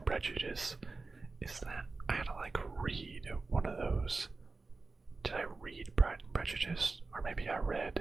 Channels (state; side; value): quieter; left; 3.8 dB